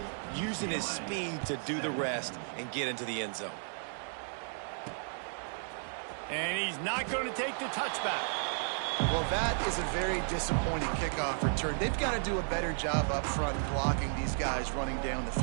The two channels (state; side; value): silent; left; 55 dB below the other